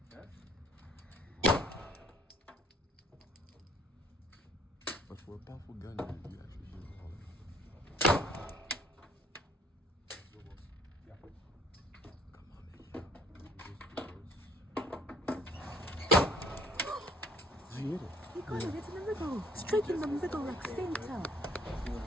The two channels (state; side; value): normal; both; correlation 0.58